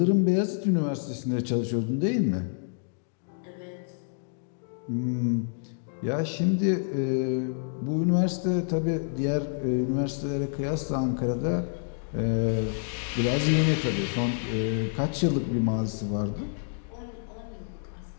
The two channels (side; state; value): right; silent; digital silence